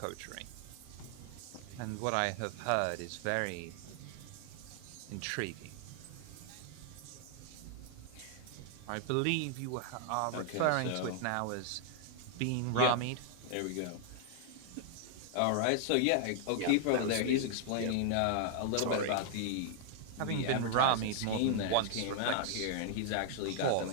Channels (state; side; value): different; both; correlation 0.00